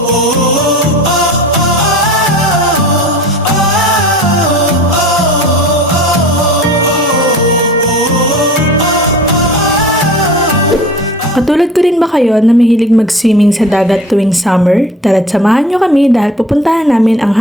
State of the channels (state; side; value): normal; both; correlation 0.41